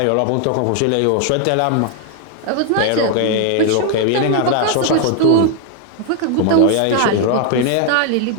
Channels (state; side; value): different; both; correlation 0.00